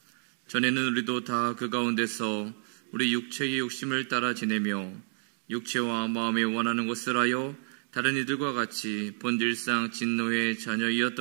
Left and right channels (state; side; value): silent; left; 58 dB below the other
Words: 전에는 우리도 다 그 가운데서 우리 육체의 욕심을 따라 지내며 육체와 마음에 원하는 것을 하여 다른 이들과 같이 본질상 진노의